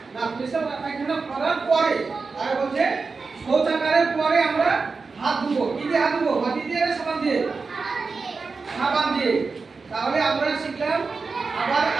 না, পেশাব পায়খানা করার পরে। আর বলছে শৌচাগারের পরে আমরা হাত ধুবো। কি দিয়ে হাত ধুবো? মাটি দিয়ে না সাবান দিয়ে? সাবান দিয়ে। তাহলে আমরা শিখলাম আবার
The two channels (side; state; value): left; quieter; 4.5 dB